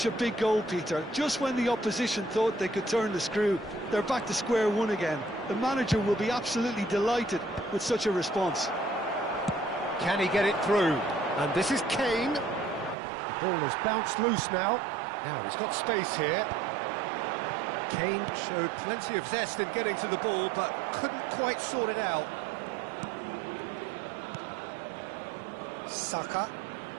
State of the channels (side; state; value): left; drops out; at 13.0 s